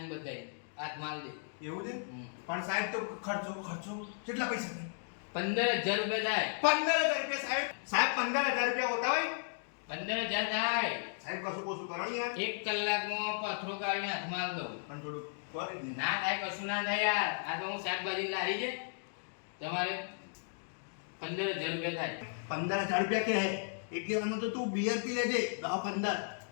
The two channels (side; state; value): right; silent; digital silence